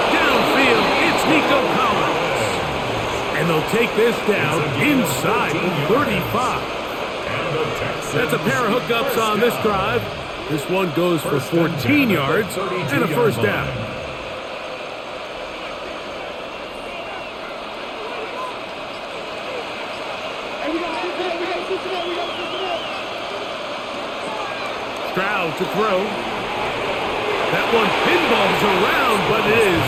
downfield, it's Nico Collins. And they'll take this down inside the 35. That's a pair of hookups on this drive. This one goes for 14 yards and a first down. Stroud to throw. That one pinballs around, but it is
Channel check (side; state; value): both; identical; correlation 1.00